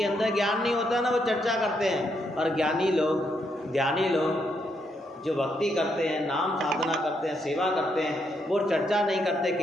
अंदर ज्ञान नहीं होता ना, वो चर्चा करते हैं। और ज्ञानी लोग, ध्यानी लोग जो भक्ति करते हैं, नाम साधना करते हैं, सेवा करते हैं, वो चर्चा नहीं करते,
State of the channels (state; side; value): normal; both; correlation 0.77